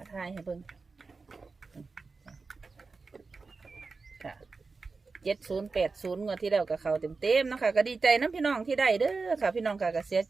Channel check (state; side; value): quieter; left; 4.3 dB